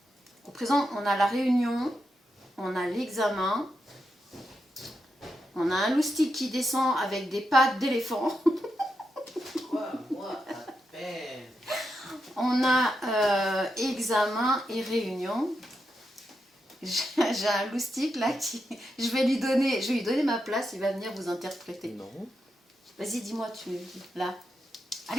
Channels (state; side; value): normal; both; correlation 0.85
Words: on a la réunion, on a l'examen, on a un loustic qui descend avec des pattes d'éléphant. On a examen et réunion. J'ai un loustic là qui... Je vais lui donner ma place, il va venir vous interpréter. Non. Vas-y, dis-moi, tu es là.